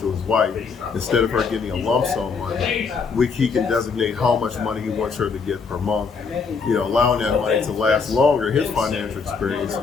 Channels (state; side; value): quieter; right; 5.2 dB